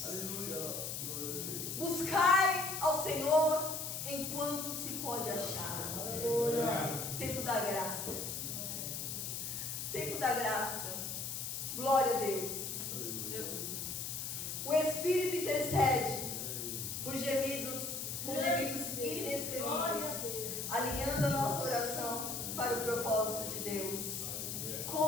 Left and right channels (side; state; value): left; noise; hiss, 4 dB below the sound